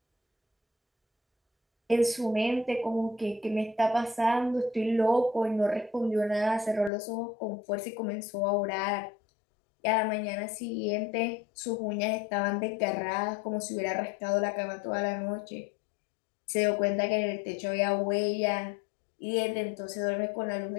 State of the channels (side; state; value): right; drops out; at 6.9 s